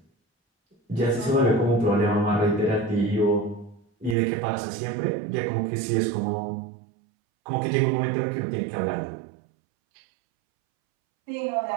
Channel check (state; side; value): drops out; left; at 4.2 s